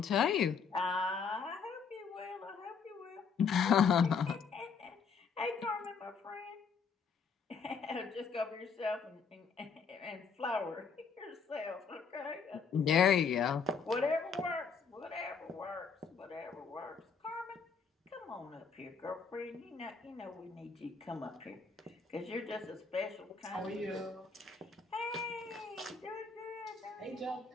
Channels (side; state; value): right; quieter; 5.6 dB